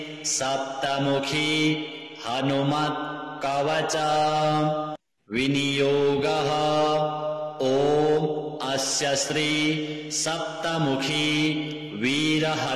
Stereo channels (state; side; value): identical; both; correlation 1.00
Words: सप्तमुखी हनुमत् कवच विनियोगः। ॐ अस्य श्री सप्तमुखी वीर